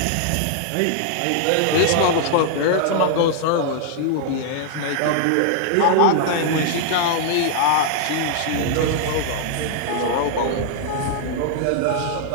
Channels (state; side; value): different; both; correlation 0.00